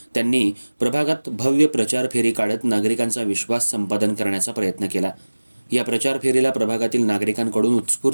त्यांनी प्रभागात भव्य प्रचार फेरी काढत नागरिकांचा विश्वास संपादन करण्याचा प्रयत्न केला. या प्रचार फेरीला प्रभागातील नागरिकांकडून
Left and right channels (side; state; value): both; inverted; correlation -1.00